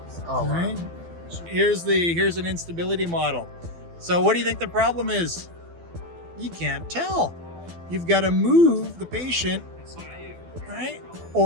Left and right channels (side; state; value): left; late; 12 ms